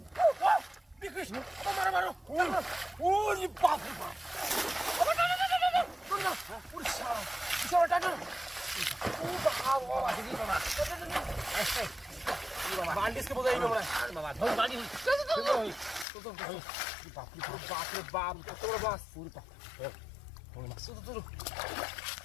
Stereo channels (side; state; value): right; drops out; at 16.1 s